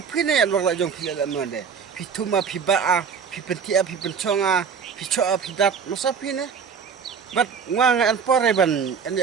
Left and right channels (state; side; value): quieter; left; 6.4 dB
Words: pi ne lok la jong pi la mon de. Pi tuma pi ba a, pi pentia pi penconga, pi choa pi dat masa pi ne. Bat wang an pore ban an